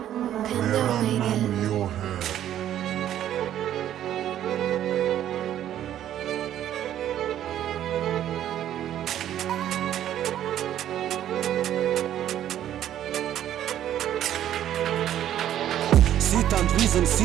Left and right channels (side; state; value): left; quieter; 11.4 dB